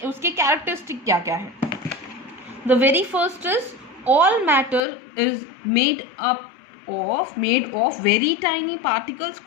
कैरेक्टरिस्टिक क्या क्या है। The very first is all matter is made of very tiny particles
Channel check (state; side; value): drops out; right; at 4.8 s